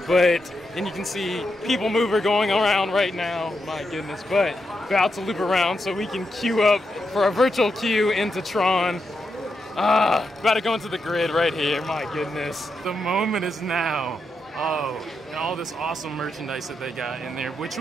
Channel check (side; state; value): both; normal; correlation 0.84